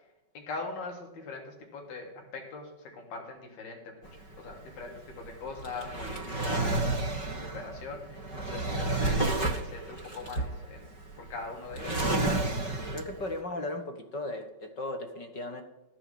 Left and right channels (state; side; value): late; right; 5.3 ms